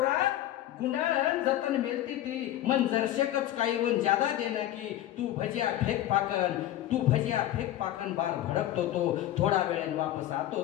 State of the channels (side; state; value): right; quieter; 13.3 dB